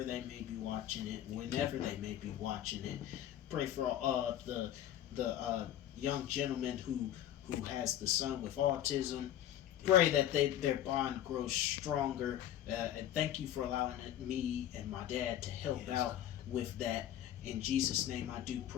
they may be watching it, whenever they may be watching it. Pray for the young gentleman who has the son with autism. Pray that their bond grows stronger. And thank you for allowing me and my dad to help out with that. In Jesus' name I do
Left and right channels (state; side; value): quieter; right; 11.8 dB